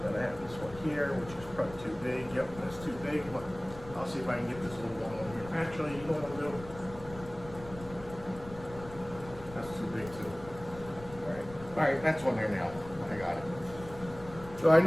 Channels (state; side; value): noise; left; rumble, 15 dB below the sound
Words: Then I have this one here, which is probably too big. Yep, that's too big. But I'll see if I can get this little one on here. Actually, you know what I'll do? That's too big too. All right, that's on there now. I got it. So I